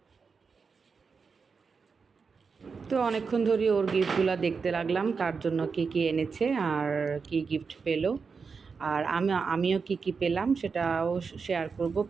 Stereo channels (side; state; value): left; quieter; 5.2 dB